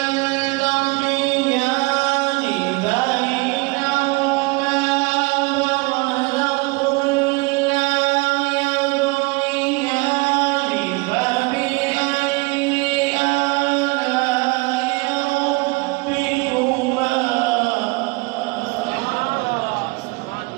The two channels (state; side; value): quieter; left; 26.4 dB